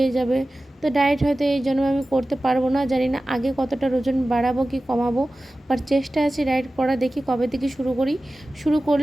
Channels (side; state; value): both; normal; correlation 0.96